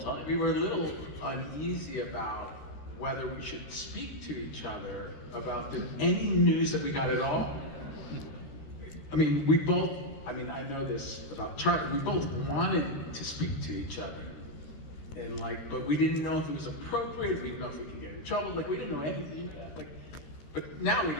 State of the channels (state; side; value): late; right; 13 ms